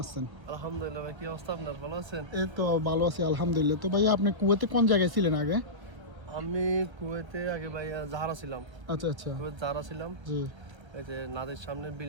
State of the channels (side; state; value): left; late; 1.2 ms